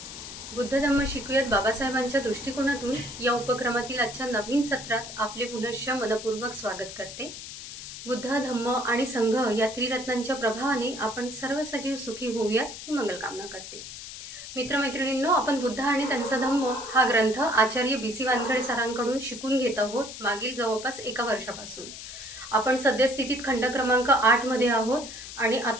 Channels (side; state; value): left; noise; hiss, 11 dB below the sound